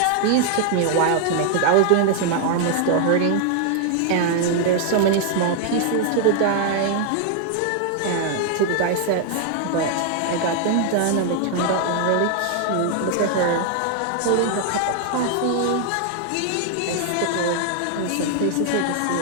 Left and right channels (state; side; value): different; both; correlation 0.00